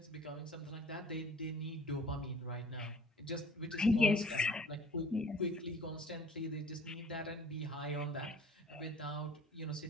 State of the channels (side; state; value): both; normal; correlation 0.48